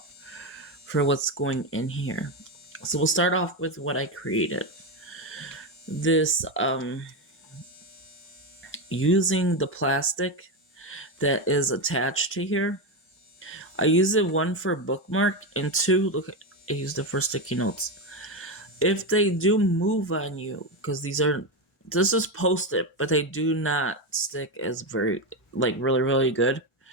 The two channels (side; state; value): both; normal; correlation 0.12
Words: for what's going in here. So we'll start off with what I created. This, using the plastic that is attached to here. I use it 1 for bookmark and 2, look, I used it for sticky notes. If they do move on you, because this is Post-it, but they do not stick as really, really good.